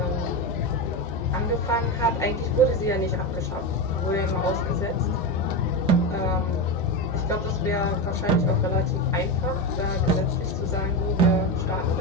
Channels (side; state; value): both; normal; correlation 0.16